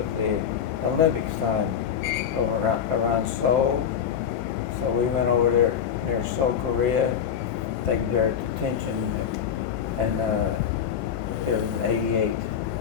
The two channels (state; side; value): quieter; right; 8.2 dB